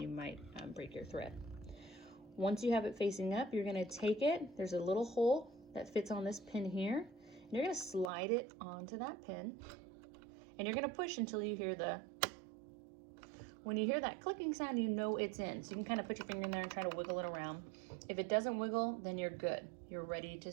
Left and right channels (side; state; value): left; drops out; at 8.1 s